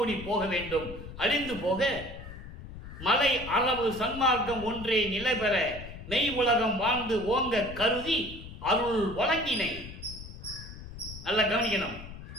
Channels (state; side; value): noise; left; rumble, 13 dB below the sound